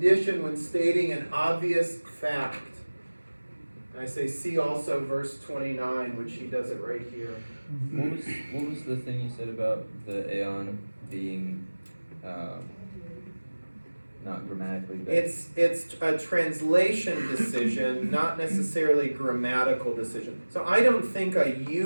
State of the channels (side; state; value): both; inverted; correlation -1.00